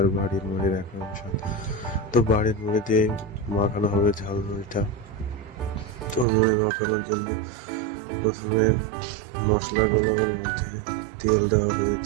বাড়ির মুড়ির একরকম স্বাদ। তো বাড়ির মুড়ি দিয়ে মাখানো হবে ঝালমুড়িটা। তো মুড়ি মাখানোর জন্য প্রথমে মশলাগুলোর মধ্যে তেল দেওয়া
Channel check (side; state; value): left; drops out; at 6.2 s